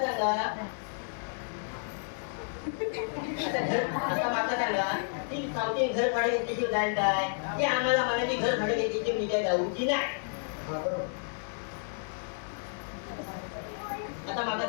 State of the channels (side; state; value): right; silent; 57 dB below the other